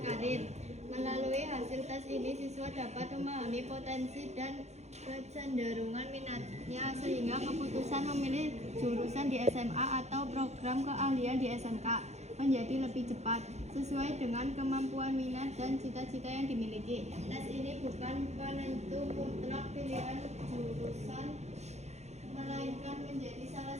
Melalui hasil tes ini, siswa dapat memahami potensi dan kecenderungan minatnya sehingga keputusan memilih jurusan di SMA atau program keahlian di SMK menjadi lebih cepat sesuai dengan kemampuan minat dan cita-cita yang dimiliki. Tes ini bukan penentu mutlak pilihan jurusan, melainkan menjadi salah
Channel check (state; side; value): late; left; 0.32 ms